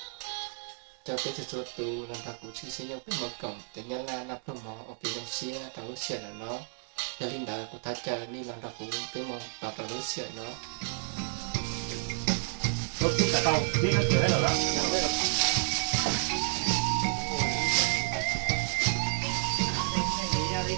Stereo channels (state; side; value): silent; left; 57 dB below the other